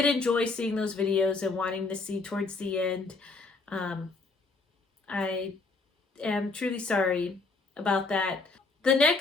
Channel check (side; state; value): right; quieter; 3.8 dB